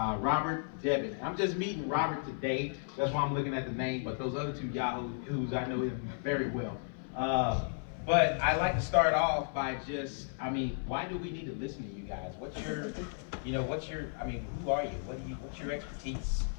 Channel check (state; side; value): silent; right; 55 dB below the other